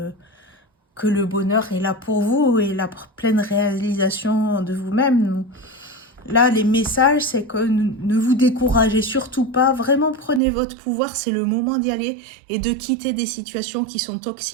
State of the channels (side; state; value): left; drops out; at 10.4 s